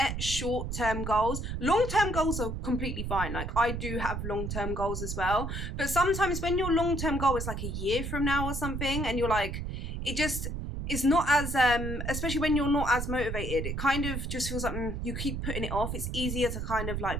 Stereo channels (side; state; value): right; noise; rumble, 4 dB below the sound